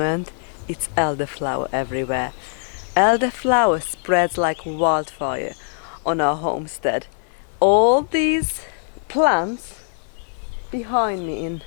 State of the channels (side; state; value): right; silent; 59 dB below the other